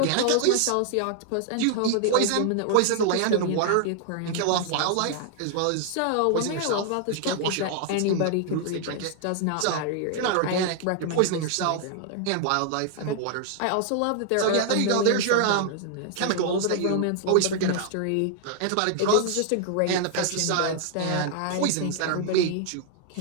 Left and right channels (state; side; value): different; both; correlation 0.00